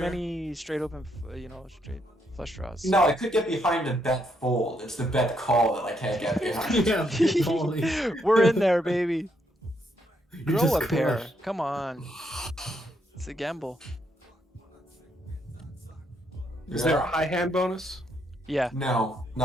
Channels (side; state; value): both; normal; correlation 0.75